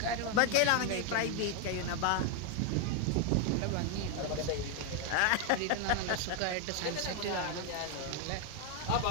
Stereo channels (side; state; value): both; different; correlation 0.01